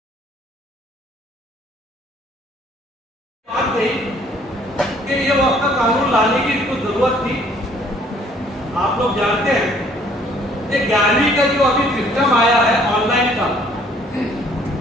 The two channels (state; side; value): normal; both; correlation 0.60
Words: بات کہی کہ یہ وقت کا قانون لانے کی اس کو ضرورت تھی. آپ لوگ جانتے ہیں کہ 11ویں کا جو ابھی سسٹم آیا ہے آن لائن کا،